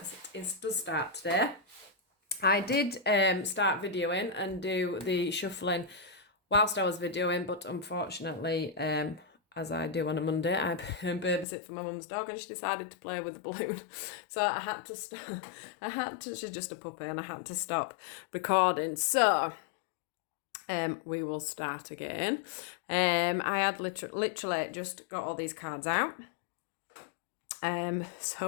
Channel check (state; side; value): drops out; right; at 11.5 s